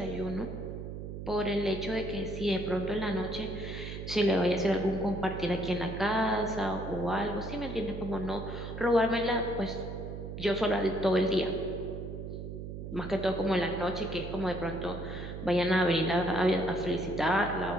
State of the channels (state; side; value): noise; right; hum, 8 dB below the sound